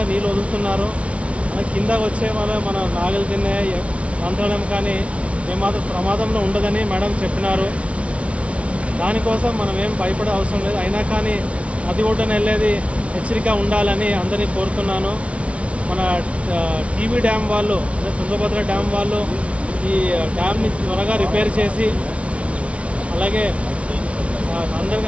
నీళ్ళు వదులుతున్నారు. మన కింద వచ్చే వల్ల మన నాగలు తినే మంత్రాలయం కానీ ఏమాత్రం ప్రమాదంలో ఉండదని మేడం చెప్పినారు. దానికోసం మనం ఏం భయపడే అవసరం లేదు. అయినా కానీ నది ఒడ్డున వెళ్ళేది హెచ్చరిక ఉండాలని అందరినీ కోరుతున్నాను. మన టీబీ డ్యామ్ వాళ్ళు అదే తుంగభద్ర డ్యామ్ వాళ్ళు ఈ డ్యామ్ని త్వరగా రిపేర్ చేసి అలాగే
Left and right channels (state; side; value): late; left; 0.062 ms